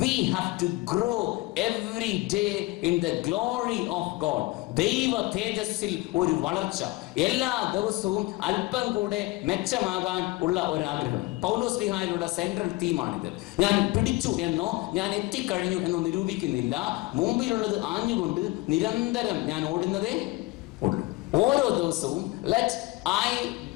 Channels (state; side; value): quieter; right; 21.8 dB